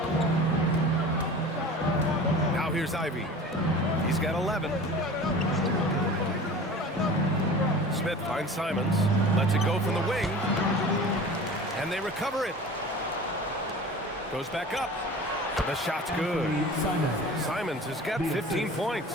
Now here's Ivey. He's got 11. Smith finds Simons. Lets it go from the wing. And they recover it. Goes back up. The shot's good. Simons has got 15 points.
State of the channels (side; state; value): both; normal; correlation 0.39